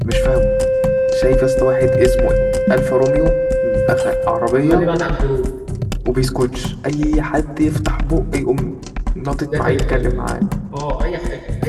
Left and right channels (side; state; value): both; identical; correlation 1.00